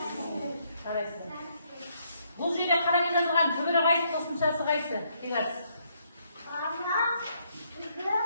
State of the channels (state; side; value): inverted; both; correlation -0.73